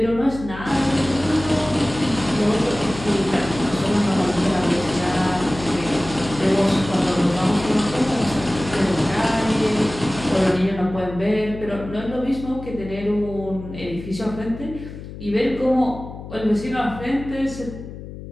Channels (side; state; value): left; noise; hum, 12 dB below the sound